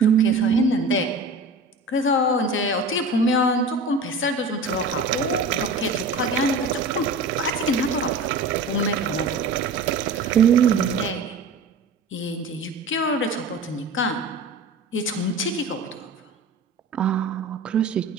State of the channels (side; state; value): left; quieter; 3.2 dB